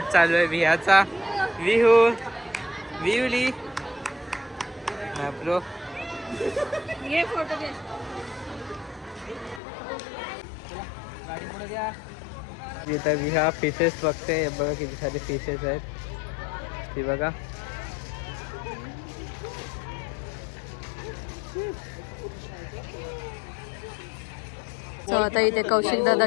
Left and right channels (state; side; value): drops out; right; at 9.6 s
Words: चालू आहे विहाचा. विहू विहुली ब्रो. ये फोटो घे. गाडी पुढे द्या. इथं विहा फिशेस बघते. बघा किती सारे फिशेस आहेत ती बघा. So, आता इथे कौशिक दादा